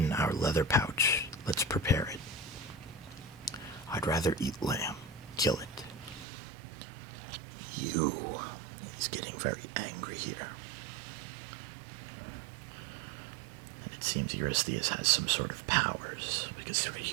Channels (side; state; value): left; drops out; at 6.2 s